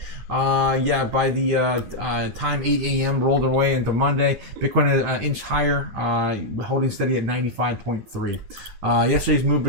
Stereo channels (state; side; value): late; left; 9.8 ms